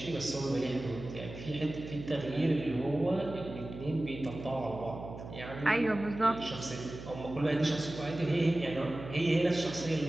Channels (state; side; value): noise; right; hum, 11 dB below the sound